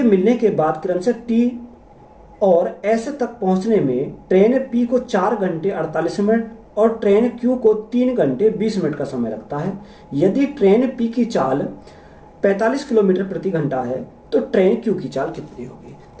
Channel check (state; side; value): identical; both; correlation 1.00